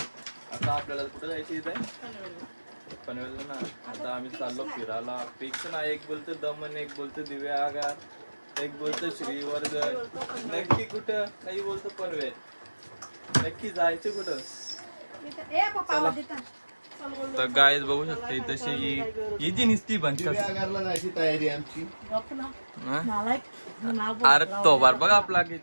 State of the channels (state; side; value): inverted; both; correlation -1.00